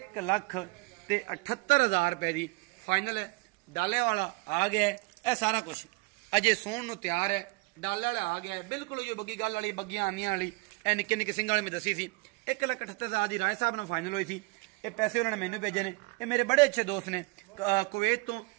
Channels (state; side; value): quieter; left; 26.0 dB